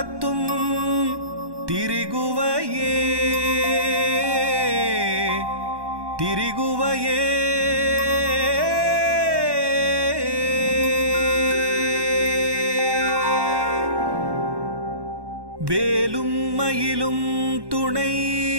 திரிகுவையே திரிகுவையே வேலும் மயிலும் துணை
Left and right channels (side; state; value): left; late; 1.1 ms